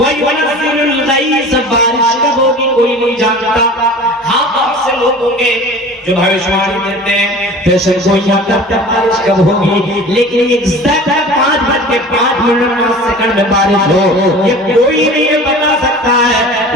الْغَيْثَ، بارش کب ہوگی کوئی نہیں جانتا۔ ہاں بہت سے لوگ ہوں گے جو بھوشواری دیتے ہیں، پیشن گوئیاں کرتے ہیں بارش کب ہوگی، لیکن ایگزیکٹ 5:05 میں بارش ہو یہ کوئی نہیں بتا سکتا ہے۔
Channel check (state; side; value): normal; both; correlation 0.40